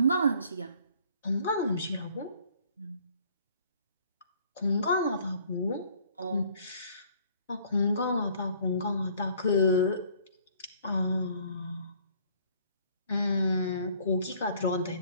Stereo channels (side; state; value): both; inverted; correlation -0.58